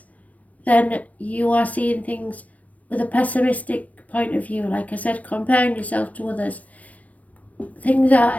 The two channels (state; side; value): late; right; 0.069 ms